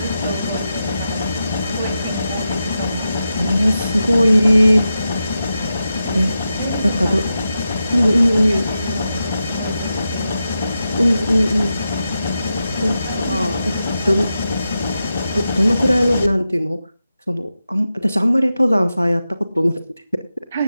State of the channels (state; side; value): inverted; both; correlation -0.90